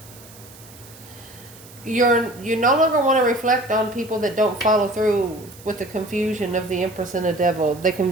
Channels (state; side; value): noise; right; hiss, 21 dB below the sound